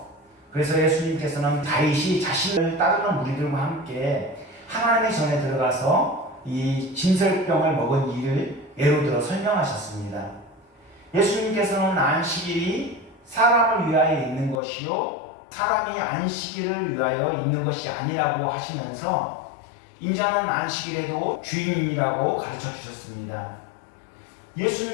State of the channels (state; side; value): drops out; right; at 14.6 s